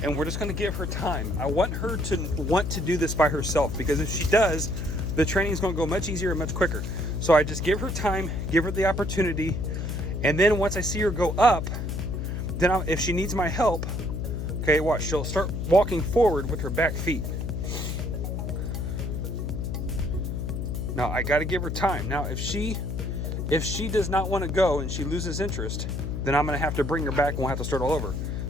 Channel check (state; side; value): noise; left; hum, 3 dB below the sound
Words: And we're just gonna give her time. I want her to want to do this by herself, because if she does, the training is gonna go much easier and much quicker. So I just give her time, give her the opportunity, and then once I see her go up, then if she needs my help, okay, watch, she'll start walking forward with her back feet. Now I gotta give her time. Now if she does not wanna go and she loses interest, then I'm gonna have to bring her back and we'll have to start all over.